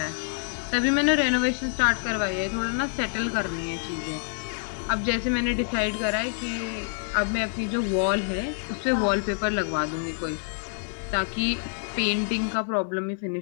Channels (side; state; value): right; silent; 60 dB below the other